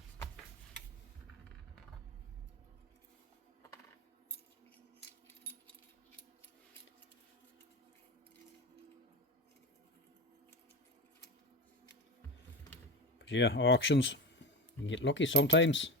Yeah, auctions, you can get lucky sometimes.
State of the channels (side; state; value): both; normal; correlation 0.23